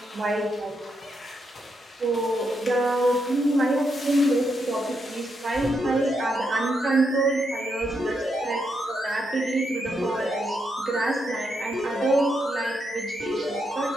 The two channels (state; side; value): normal; both; correlation 0.81